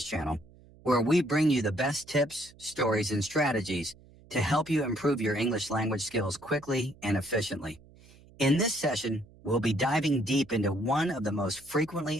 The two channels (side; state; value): right; noise; hum, 25 dB below the sound